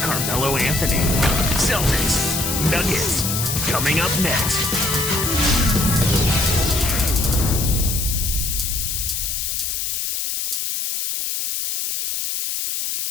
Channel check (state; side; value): noise; left; hiss, 2 dB below the sound